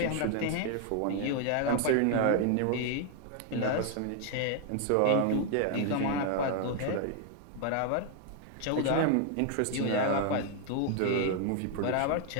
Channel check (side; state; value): both; different; correlation 0.00